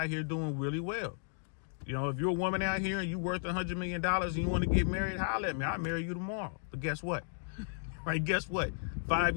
here doing really well. You know, if you're a woman out here and you're worth $100 million and you want to get married, holler at me. I'll marry you tomorrow. But guess what? Right? Guess what?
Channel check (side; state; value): right; silent; digital silence